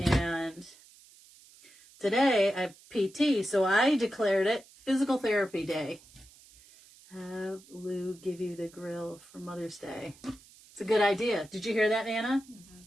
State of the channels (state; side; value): noise; right; hiss, 24 dB below the sound